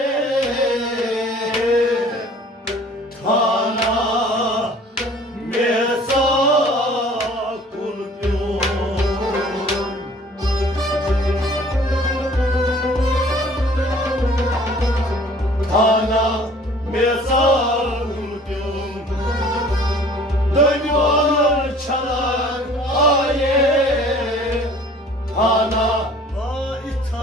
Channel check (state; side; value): normal; both; correlation 0.51